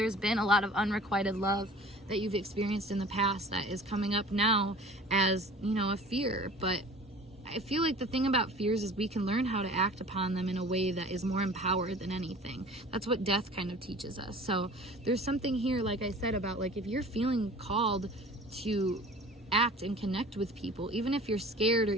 been a lot of unrequited love that you've experienced in the past that is coming up now as, you know, a fear. But I feel like the thing about fears is we can learn how to act upon them in a way that is more empowered than anything. That's what death kind of teaches us. So there's something here, like I said, about like if you're feeling called to act and connect with people, even if you're scared or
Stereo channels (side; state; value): both; normal; correlation 0.45